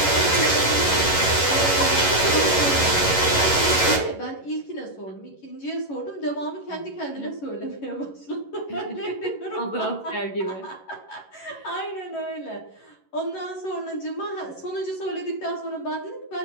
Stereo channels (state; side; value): late; right; 11 ms